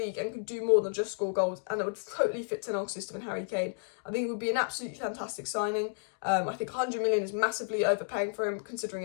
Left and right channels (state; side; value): silent; right; digital silence